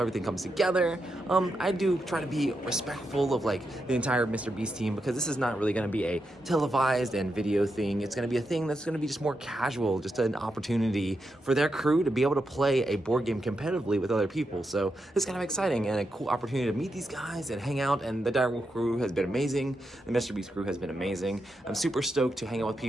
comes together. I do try to be respectful of like the entire MrBeast team, because this is not really gonna be a televised and video thing. It's gonna be a thing that's gonna be just more casual, just an opportunity for their crew to be able to play a board game competitively with other people. So it's kind of exciting and a cool opportunity to meet these guys and hang out. And the Dire Wolf crew has been amazing. The MrBeast crew has been amazing. I'm super stoked to hang out with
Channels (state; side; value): normal; both; correlation 0.85